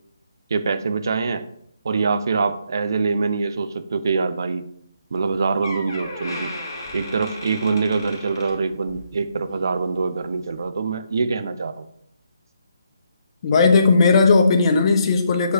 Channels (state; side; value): inverted; both; correlation -0.75